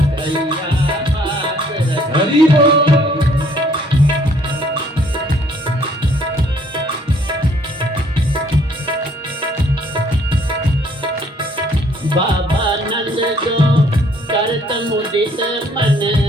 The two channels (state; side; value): normal; both; correlation 0.62